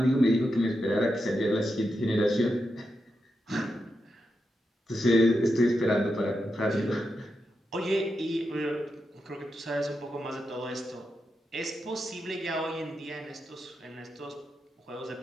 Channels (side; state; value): both; normal; correlation 0.87